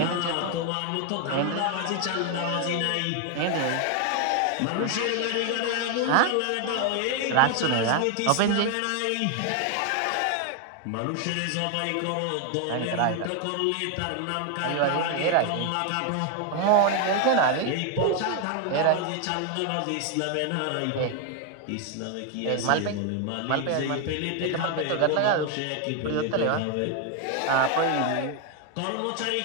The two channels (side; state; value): both; different; correlation 0.01